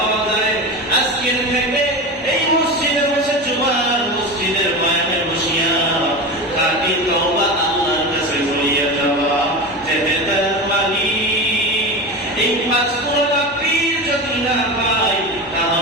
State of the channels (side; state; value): both; normal; correlation 0.25